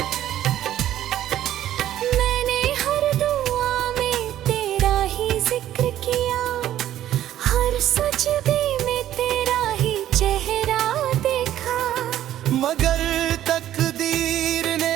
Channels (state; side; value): quieter; left; 12.3 dB